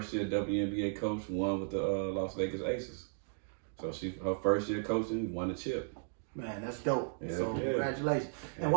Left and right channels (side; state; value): left; silent; digital silence